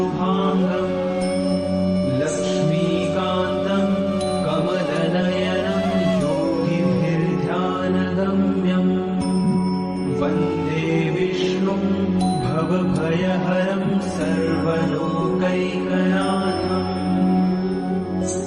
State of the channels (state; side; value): identical; both; correlation 1.00